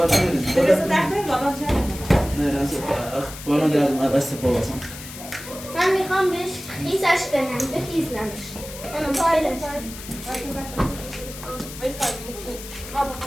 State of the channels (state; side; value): noise; left; hiss, 13 dB below the sound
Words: ریزی درست داخل بابا چه نه راست بالون دادم از پاواسم من میخوام بهش خیزش کنم بخیزنمش من فایلش